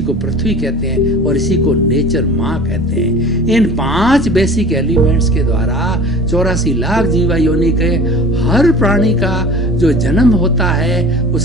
पृथ्वी कहते हैं, और इसी को नेचर माँ कहते हैं। इन 5 बेसिक एलिमेंट्स के द्वारा 84 लाख जीवा योनि के हर प्राणी का जो जन्म होता है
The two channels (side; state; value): both; normal; correlation 0.41